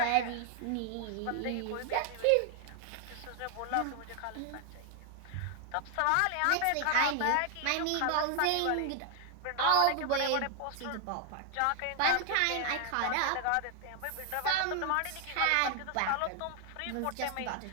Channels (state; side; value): different; both; correlation 0.00